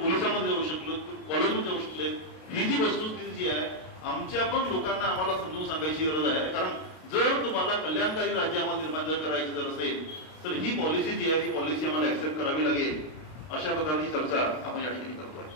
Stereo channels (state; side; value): late; right; 32 ms